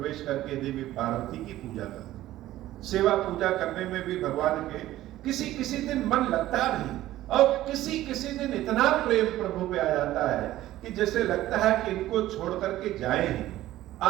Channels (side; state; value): left; quieter; 14.8 dB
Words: करके देवी पार्वती की पूजा करती। सेवा पूजा करने में भी भगवान के किसी किसी दिन मन लगता नहीं, और किसी किसी दिन इतना प्रेम प्रभु पे आ जाता है कि जैसे लगता है कि इनको छोड़ करके जाए ही।